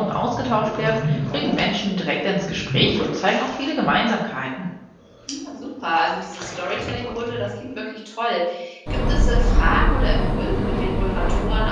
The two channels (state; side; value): identical; both; correlation 1.00